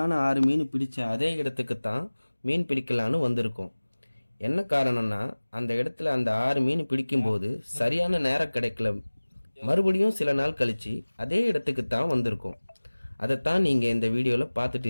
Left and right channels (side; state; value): both; inverted; correlation -1.00